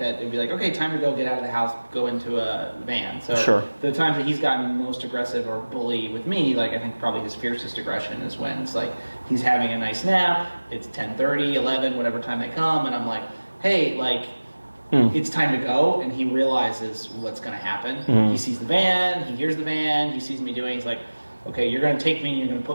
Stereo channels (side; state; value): both; inverted; correlation -1.00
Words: that. It'd be like, okay, time to go get out of the house, go into a van. So Sure. the times that he's gotten most aggressive or bully with me, like I think probably his fiercest aggression is when it's like, he's having a nice nap, it's 10:30, 11, whatever time they come, and I'm like, hey, like, it's time to go, and he realizes what's going to happen. He sees the van, he hears the van, he sees me doing, he's like, okay, you're going to take me and you're going to